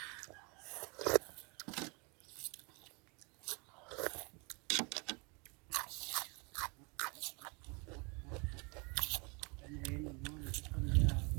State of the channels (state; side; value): quieter; left; 31.2 dB